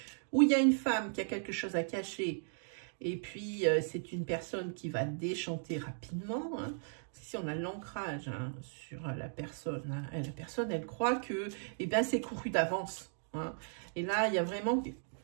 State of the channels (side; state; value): left; silent; digital silence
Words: ou il y a une femme qui a quelque chose à cacher, et puis c'est une personne qui va déchanter rapidement, hein. Si on a l'ancrage hein, sur la personne, hein, la personne elle croit que eh ben, c'est couru d'avance, hein. Et là il y a vraiment,